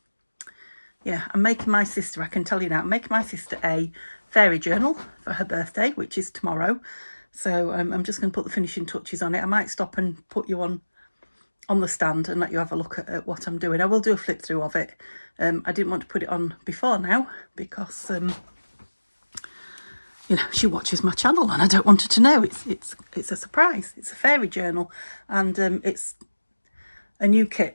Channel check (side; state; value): both; inverted; correlation -1.00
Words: Yeah, I'm making my sister, I can tell you now, I'm making my sister a fairy journal for her birthday, which is tomorrow. So I'm just going to put the finishing touches on it. I might stop and put you on the stand and let you have a look at what I'm doing. I will do a flip through of it. I didn't want to put it on before now because, you know, she watches my channel and I don't want her to know. It's a surprise. It's a fairy journal, and it's a new